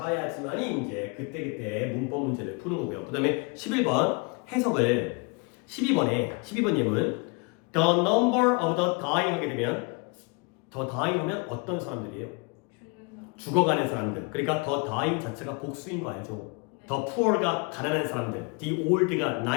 이제 그때그때 문법 문제를 푸는 거고요. 그 다음에 11번 해석을 12번 예문 the number of the dying 하게 되면 the dying 하면 어떤 사람들이에요? 죽어가는 사람들. 그러니까 the dying 자체가 복수인 거 알죠? the poor가 가난한 사람들, the old가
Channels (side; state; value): right; quieter; 30.6 dB